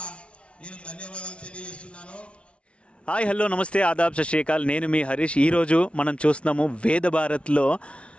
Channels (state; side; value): late; right; 0.060 ms